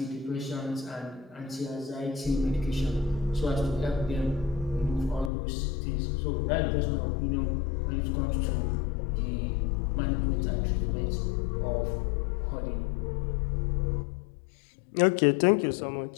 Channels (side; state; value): right; drops out; at 5.3 s